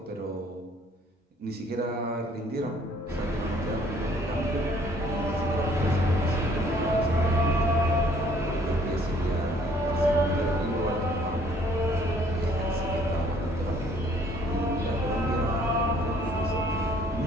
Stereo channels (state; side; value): normal; both; correlation 0.60